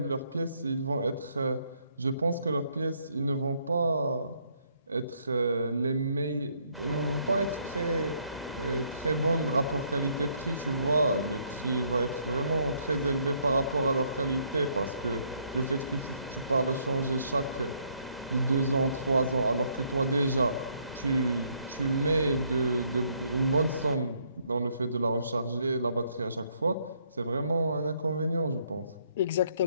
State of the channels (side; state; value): both; inverted; correlation -0.70